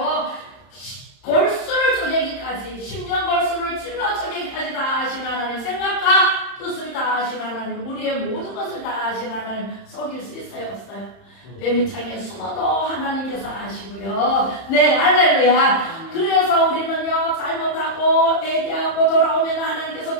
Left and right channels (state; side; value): late; right; 31 ms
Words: 골수를 쪼개기까지 10년 골수를 찔러 쪼개기까지 다 하신 하나님, 생각과 뜻을 다 하신 하나님, 우리의 모든 것을 다 하신 하나님, 속일 수 있어요 없어요? 뱀이창에 숨어도 하나님께서 아시고요. 네, 할렐루야. 그래서 우리는요, 잘못하고 회개하고 돌아오면 하나님께서